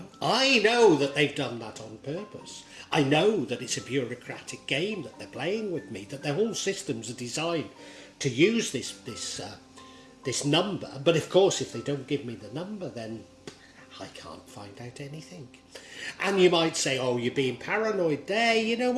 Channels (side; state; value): both; identical; correlation 1.00